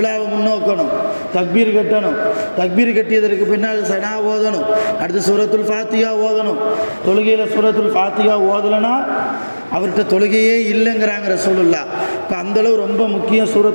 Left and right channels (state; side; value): inverted; both; correlation -1.00